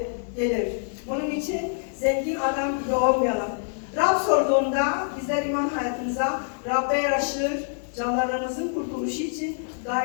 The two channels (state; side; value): silent; right; digital silence